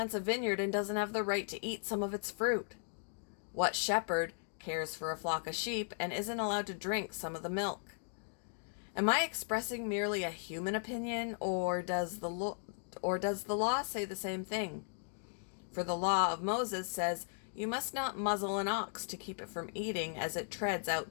a vineyard and doesn't have the right to eat some of its fruit? What shepherd cares for a flock of sheep and isn't allowed to drink some of the milk? Am I expressing merely a human opinion, or does the law say the same thing? For the law of Moses says, "You must not muzzle an ox to keep it from eating as it treads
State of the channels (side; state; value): right; silent; digital silence